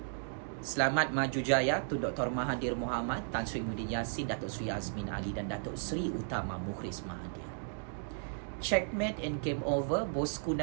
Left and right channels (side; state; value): left; silent; digital silence